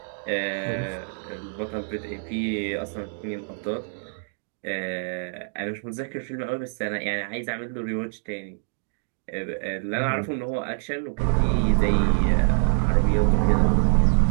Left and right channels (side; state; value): left; silent; digital silence